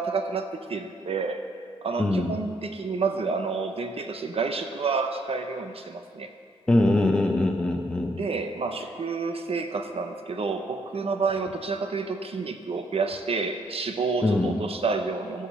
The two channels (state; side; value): normal; both; correlation 0.70